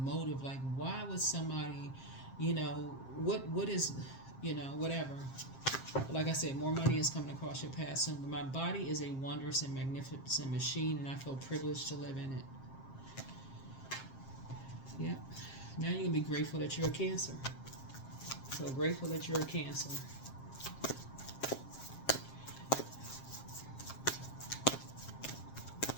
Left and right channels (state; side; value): late; right; 7.5 ms